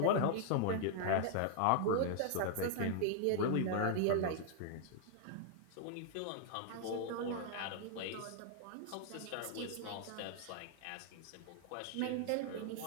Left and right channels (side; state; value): both; different; correlation -0.01